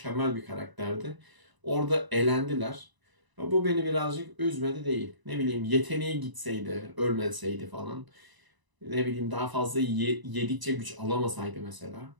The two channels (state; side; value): late; left; 1.0 ms